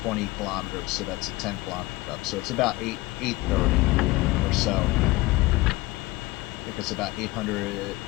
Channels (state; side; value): quieter; right; 20.4 dB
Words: kilometers, so that's a 10 kilometer up. So it's about 830 or so. I think it's about 800.